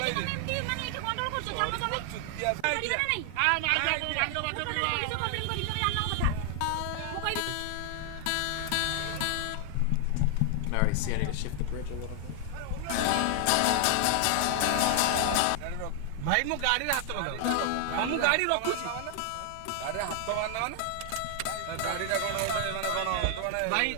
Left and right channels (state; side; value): different; both; correlation 0.00